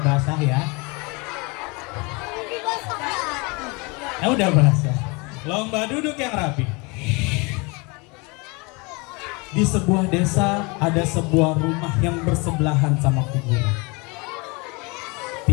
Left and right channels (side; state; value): right; quieter; 28.2 dB